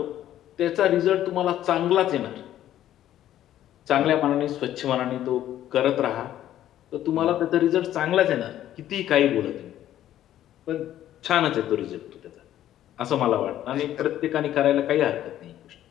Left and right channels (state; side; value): quieter; right; 12.2 dB